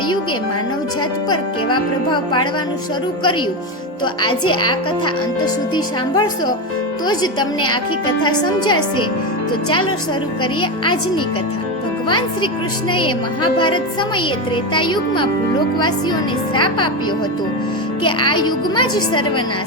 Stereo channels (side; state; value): both; normal; correlation 0.15